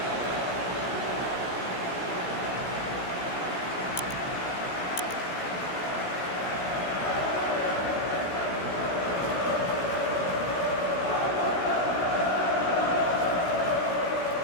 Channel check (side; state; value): right; late; 16 ms